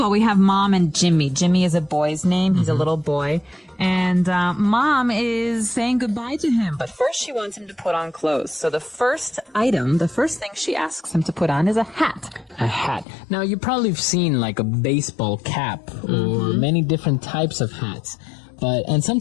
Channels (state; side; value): drops out; right; at 13.1 s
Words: we have Mom and Jimmy. Jimmy is a boy's name. He's a little boy. And Mom is saying goodbye to him. But first she wants him to put on clothes. So the first item, the first thing she asks him to put on is a hat. A hat. Now, you probably have seen like a baseball cap or many different types of hats. And